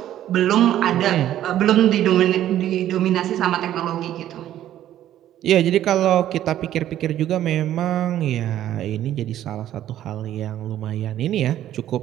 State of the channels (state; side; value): quieter; left; 12.2 dB